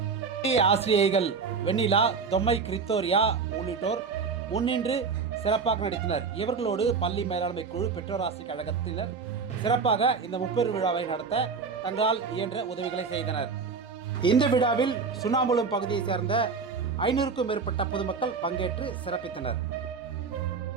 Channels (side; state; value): left; quieter; 5.2 dB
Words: ஆசிரியைகள் வெண்ணிலா, தொம்மை, கிரித்தோரியா உள்ளிட்டோர் முன்னின்று சிறப்பாக நடத்தினர். இவர்களோடு பள்ளி மேலாண்மை குழு, பெற்றோர் ஆசிரியர் கழகத்தினர் சிறப்பாக இந்த முப்பெரும் விழாவை நடத்த தங்களால் இயன்ற உதவிகளை செய்தனர். இந்த விழாவில் சுண்ணாம்புலம் பகுதியை சேர்ந்த 500க்கும் மேற்பட்ட பொதுமக்கள் பங்கேற்று சிறப்பித்தனர்.